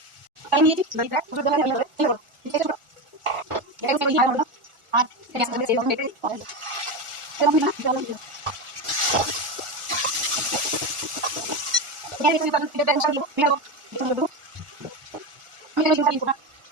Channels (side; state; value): left; late; 1.4 ms